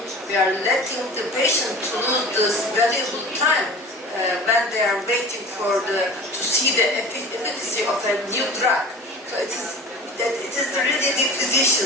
letting the patient to lose this valuable time when they are waiting to see the efficacy of a new drug. So it is really the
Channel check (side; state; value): both; normal; correlation 0.38